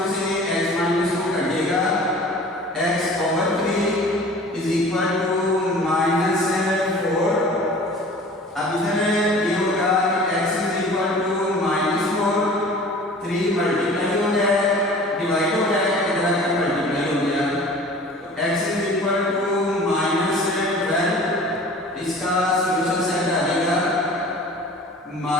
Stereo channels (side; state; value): both; normal; correlation 0.44